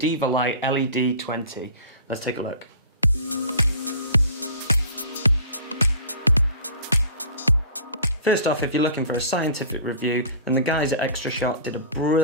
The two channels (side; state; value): both; inverted; correlation -0.42